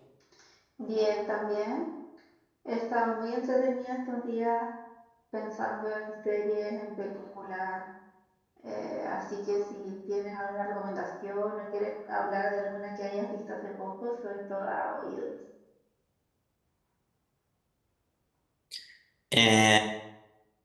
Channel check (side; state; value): both; identical; correlation 1.00